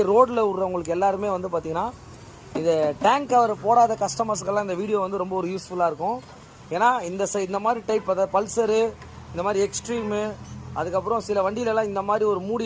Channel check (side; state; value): both; identical; correlation 1.00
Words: ரோட்டில் விடுறவங்களுக்கு எல்லாருமே வந்து பார்த்தீங்கன்னா இந்த டேங்க் கவர் போடாத கஸ்டமர்ஸ்க்கெல்லாம் இந்த வீடியோ வந்து ரொம்ப ஒரு யூஸ்ஃபுல்லாக இருக்கும். ஏன்னா இந்த மாதிரி டைப் அதாவது பல்சரு, இந்த மாதிரி எக்ஸ்ட்ரீமு, அதுக்கப்புறம் சில வண்டியிலலாம் இந்த மாதிரி ஒரு